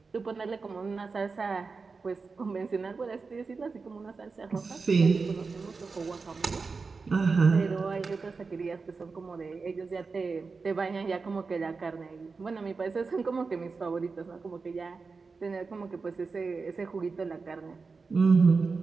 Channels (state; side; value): quieter; left; 4.5 dB